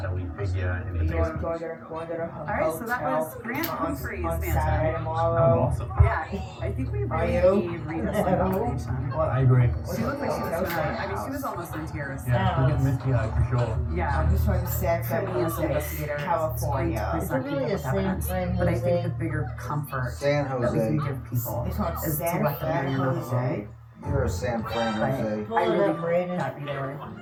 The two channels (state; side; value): identical; both; correlation 1.00